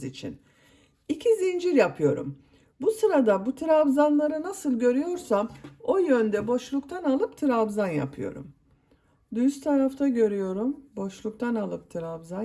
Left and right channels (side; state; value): both; identical; correlation 1.00